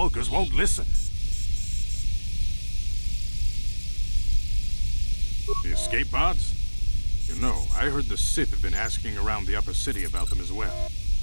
won't listen. The escape pods? You know, I heard the Sith have been asking around the upper city about them as well.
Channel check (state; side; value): inverted; both; correlation -1.00